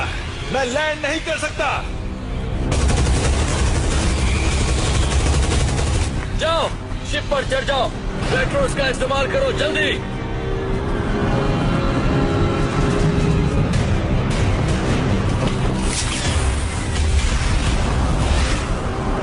मैं लैंड नहीं कर सकता। जाओ, शिप पर चढ़ जाओ। पेट्रोल्स का इस्तेमाल करो, जल्दी।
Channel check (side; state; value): both; identical; correlation 1.00